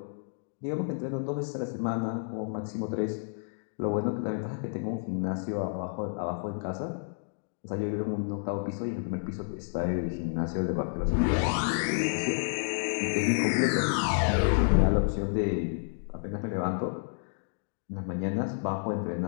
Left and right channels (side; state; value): right; silent; digital silence